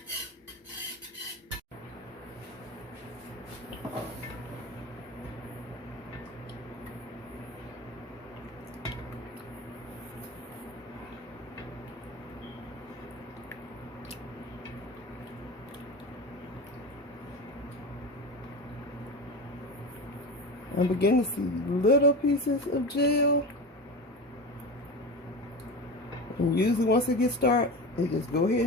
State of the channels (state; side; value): normal; both; correlation 0.27